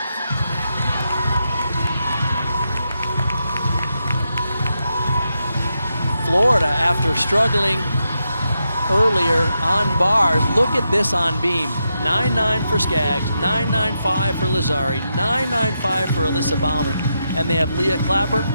Florida, after struggling earlier on bars, look at this on beam. 9.9 for Skaggs, 9.95 for Lazari, 9.95 for Alyssa Bauman. And they have Leah Clapper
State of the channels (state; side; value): inverted; both; correlation -0.84